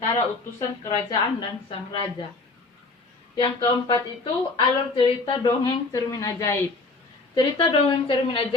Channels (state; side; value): quieter; right; 3.6 dB